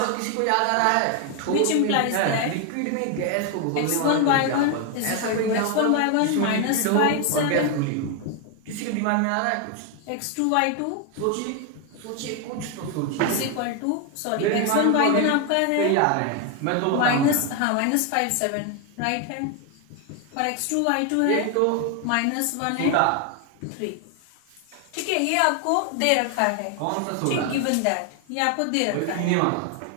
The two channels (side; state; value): both; different; correlation 0.01